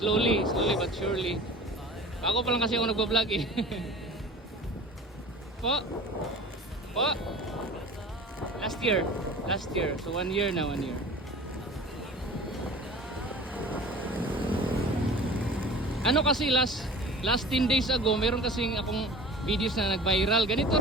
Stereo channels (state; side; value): normal; both; correlation 0.39